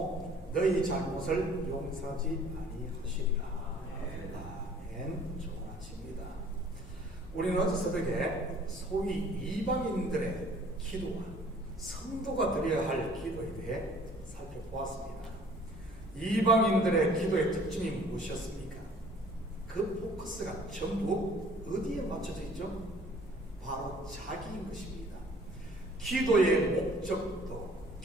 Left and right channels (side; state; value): both; normal; correlation 0.53